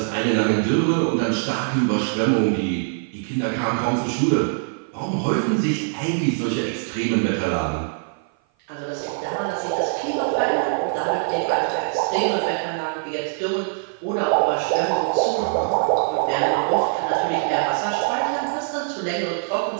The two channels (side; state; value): left; silent; 55 dB below the other